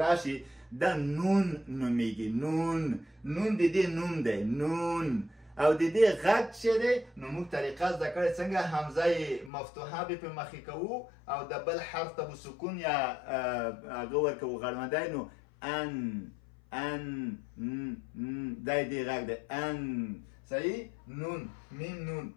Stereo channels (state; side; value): drops out; right; at 9.5 s